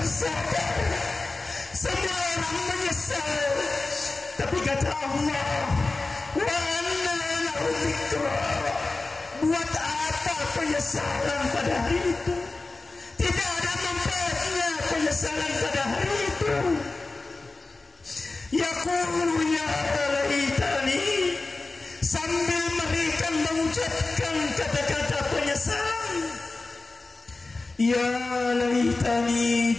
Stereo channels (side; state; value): right; quieter; 3.4 dB